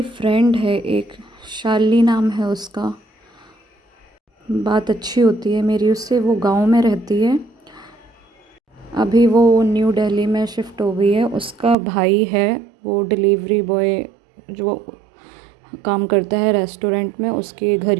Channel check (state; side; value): drops out; left; at 11.8 s